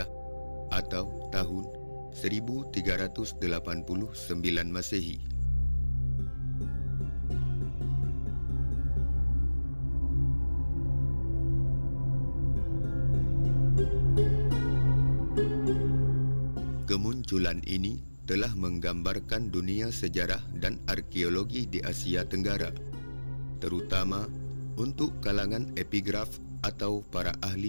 atau tahun 1389 Masehi. Kemunculan ini telah menggambarkan dunia sejarah dan arkeologi di Asia Tenggara, terutama untuk kalangan epigraf atau para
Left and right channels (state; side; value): inverted; both; correlation -1.00